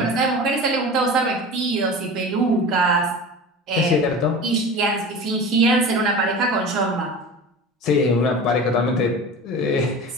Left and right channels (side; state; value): both; normal; correlation 0.34